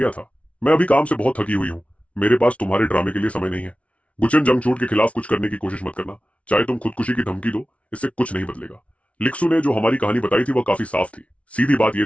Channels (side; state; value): right; late; 0.064 ms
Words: था? मैं अभी काम से बहुत थकी हुई हूँ, मेरे पास तुम्हारे ड्रामे के लिए समय नहीं है। गुचन, जंगछूट के खिलाफ कुछ करने की कोशिश मत करना, चाहे तुम खुदकुशी की धमकी दो, इससे कुछ नहीं बदलेगा। लिक्सू ने जो हमारी कहानी बताई थी वह काफी साफ थी। सीधी बात यह